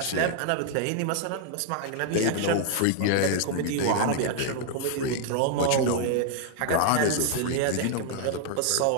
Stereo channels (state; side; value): different; both; correlation 0.00